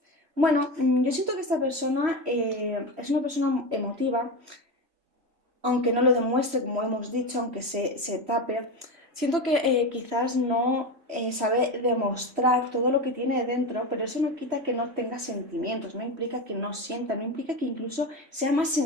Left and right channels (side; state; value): left; late; 3.1 ms